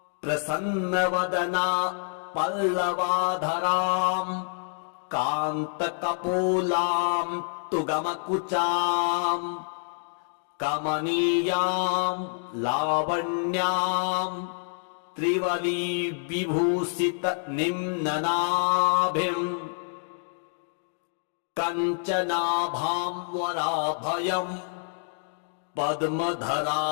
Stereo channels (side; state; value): right; silent; 60 dB below the other